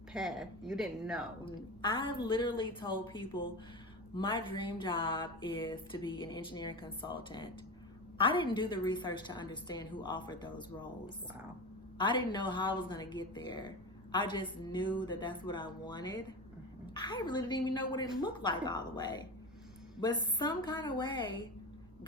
path. You didn't know. I literally told people my dream job is to be an engineering consultant. I didn't do the research to understand who offered those roles. Wow. I didn't know how I was going to get there. I just knew that that's what I wanted. I really didn't even know what it looked like all the way. But some kind of way,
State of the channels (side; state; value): right; noise; hum, 27 dB below the sound